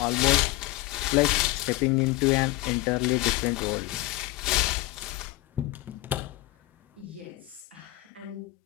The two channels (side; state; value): right; quieter; 18.9 dB